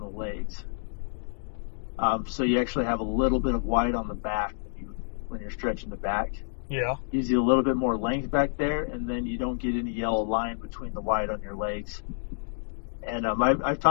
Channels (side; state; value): right; silent; digital silence